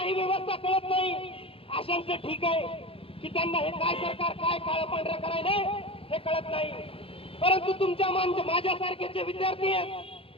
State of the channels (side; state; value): right; late; 0.27 ms